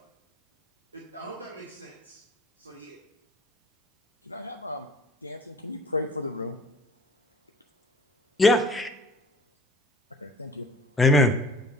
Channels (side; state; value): both; normal; correlation 0.48